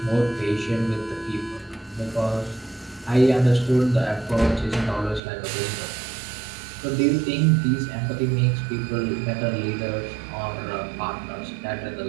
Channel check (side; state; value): left; drops out; at 5.2 s